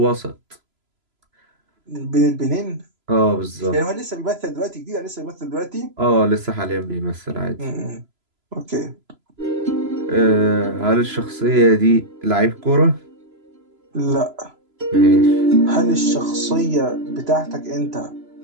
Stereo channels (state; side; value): late; left; 3.0 ms